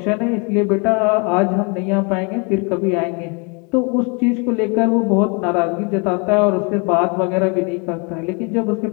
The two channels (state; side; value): quieter; right; 33.1 dB